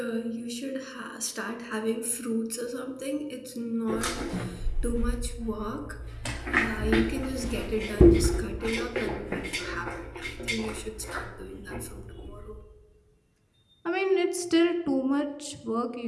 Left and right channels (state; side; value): identical; both; correlation 1.00